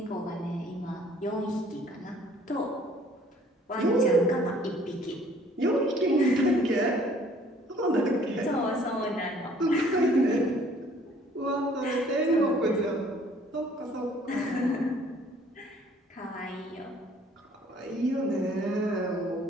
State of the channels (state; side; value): normal; both; correlation 0.57